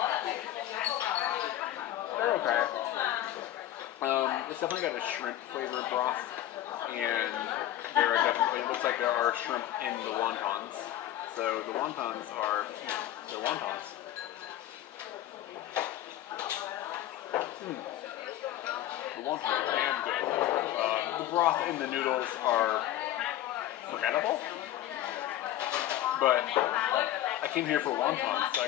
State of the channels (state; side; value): quieter; right; 13.1 dB